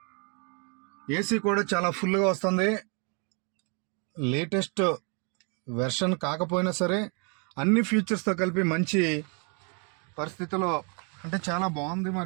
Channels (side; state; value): left; quieter; 36.1 dB